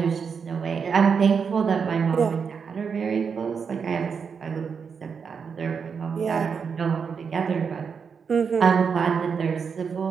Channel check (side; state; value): left; quieter; 6.1 dB